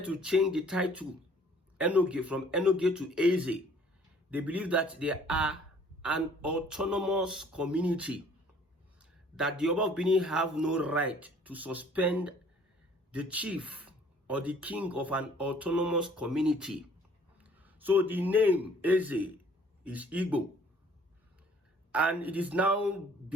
to change the title Enogie from Enogie to Eze. They believe that they are an autonomous community, that the Oba of Benin have no right to suspend the chief or the king of an autonomous community. So the name Eze is Igbo. And it is now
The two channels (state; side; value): normal; both; correlation 0.56